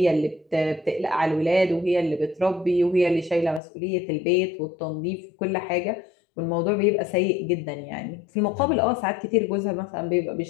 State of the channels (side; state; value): right; drops out; at 3.6 s